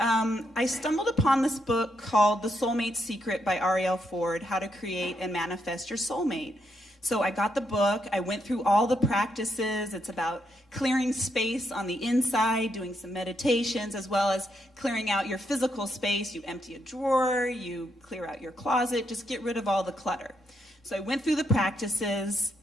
stumbled upon this book called The Soulmate Secret by Ariel Ford, How to Create and Manifest Your Soulmate. So I got the book, I went through all the practices. It's about clearing space on the inside, doing some meditations, as well as clearing out your physical space. You empty a drawer, you clear out your closet, just get rid of all the clutter. So I went through the practices,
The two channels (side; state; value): both; normal; correlation 0.78